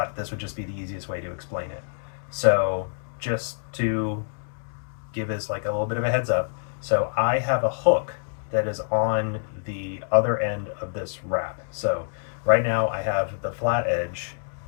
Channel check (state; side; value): silent; right; digital silence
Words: this would just be the easiest way to explain it. So just to give us like a little bit of a heads up, so I have a hook that is on the other end of this wrap. So right now I have the flat edge